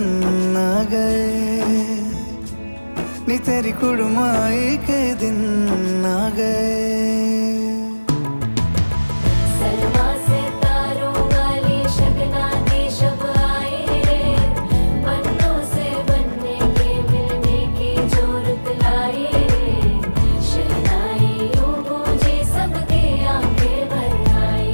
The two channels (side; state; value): both; inverted; correlation -1.00